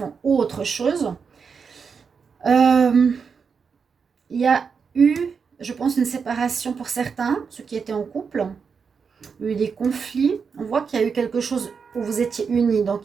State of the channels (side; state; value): left; quieter; 5.9 dB